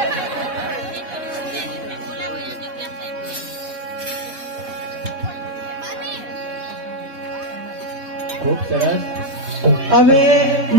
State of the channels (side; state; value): left; late; 3.6 ms